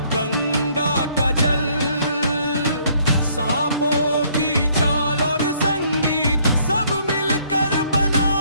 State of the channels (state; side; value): inverted; both; correlation -0.64